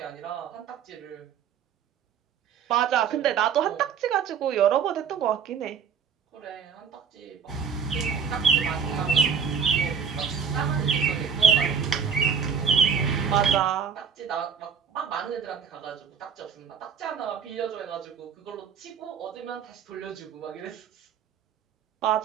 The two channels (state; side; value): quieter; left; 6.9 dB